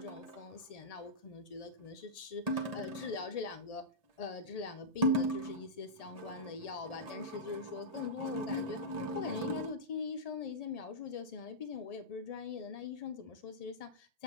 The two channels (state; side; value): late; right; 1.8 ms